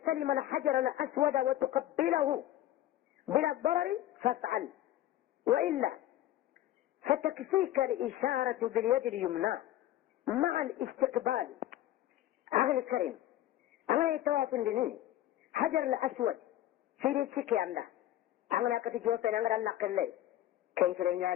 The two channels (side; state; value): right; quieter; 13.6 dB